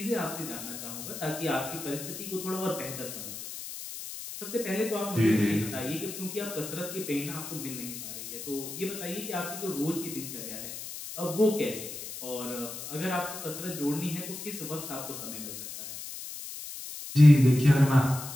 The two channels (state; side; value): noise; left; hiss, 9 dB below the sound